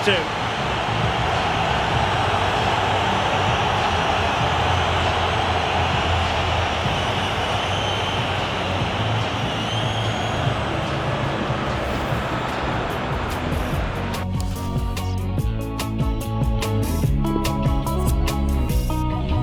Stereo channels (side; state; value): both; identical; correlation 1.00